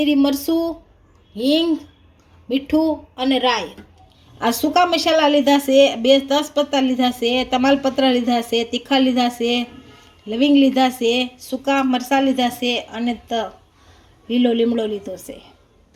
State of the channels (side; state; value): both; identical; correlation 1.00